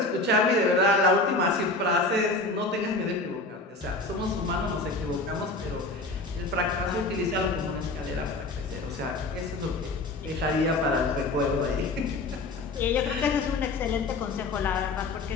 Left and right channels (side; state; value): right; quieter; 3.1 dB